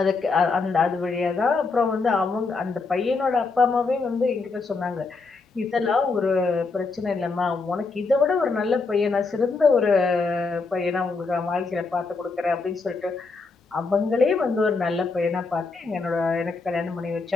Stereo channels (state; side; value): quieter; right; 4.1 dB